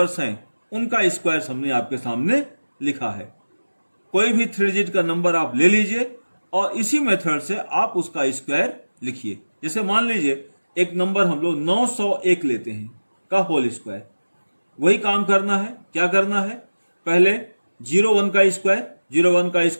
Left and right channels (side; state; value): both; inverted; correlation -1.00